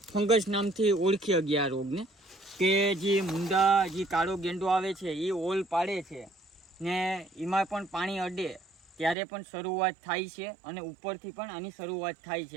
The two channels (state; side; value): drops out; left; at 9.2 s